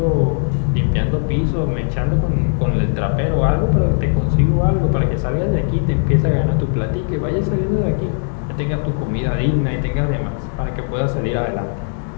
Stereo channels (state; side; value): silent; right; digital silence